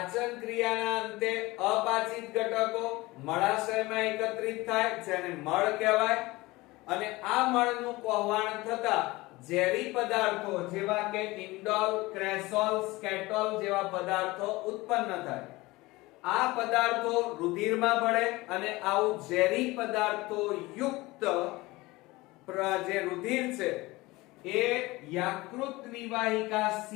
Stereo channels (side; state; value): right; quieter; 21.0 dB